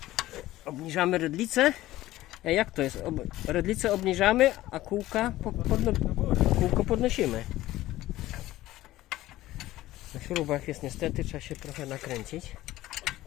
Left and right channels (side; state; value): right; quieter; 16.0 dB